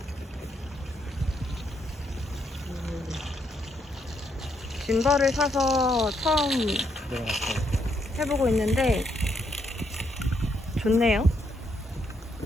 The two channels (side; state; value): both; normal; correlation 0.76